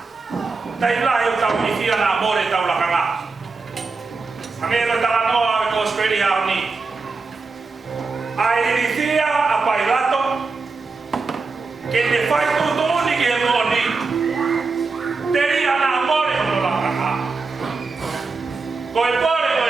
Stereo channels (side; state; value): left; quieter; 4.2 dB